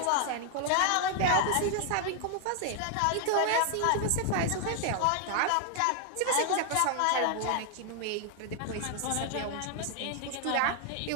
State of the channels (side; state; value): both; different; correlation 0.00